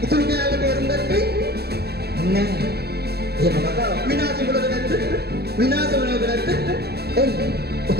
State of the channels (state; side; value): late; left; 0.47 ms